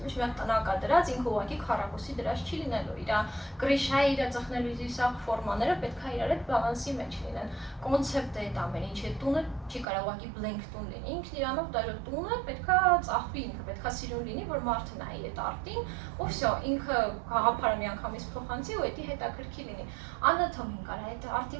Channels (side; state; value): left; drops out; at 9.9 s